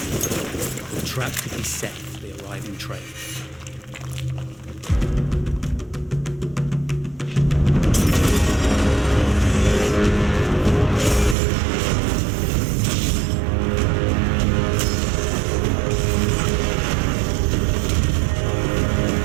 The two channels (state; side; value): drops out; left; at 11.4 s